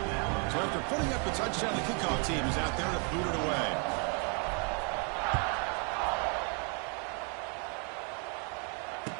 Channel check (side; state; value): left; quieter; 37.8 dB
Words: So after putting up the touchdown, the kickoff team is out there to boot it away.